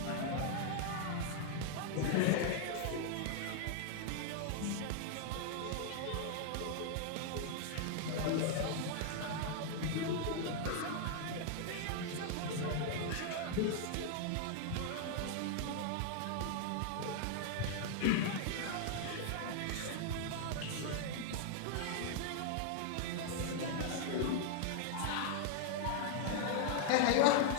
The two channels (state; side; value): different; both; correlation 0.00